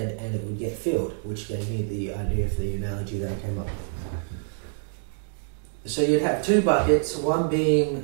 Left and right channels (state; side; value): silent; left; digital silence